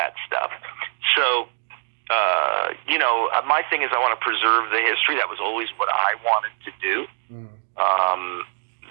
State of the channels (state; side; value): silent; left; digital silence